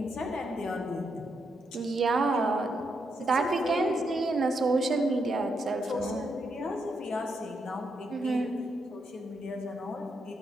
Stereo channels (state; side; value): normal; both; correlation 0.80